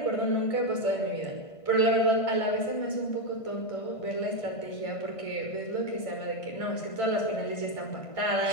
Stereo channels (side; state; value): right; late; 1.5 ms